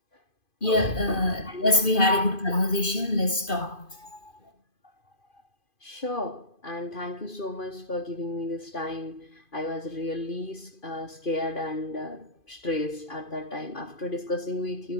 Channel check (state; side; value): late; right; 2.5 ms